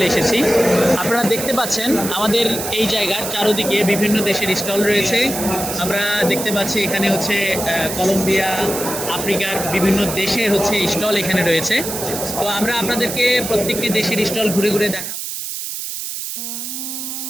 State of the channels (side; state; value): right; noise; hiss, 6 dB below the sound